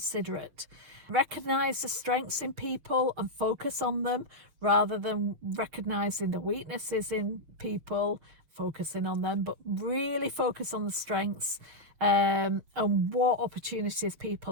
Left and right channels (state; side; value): late; left; 6.5 ms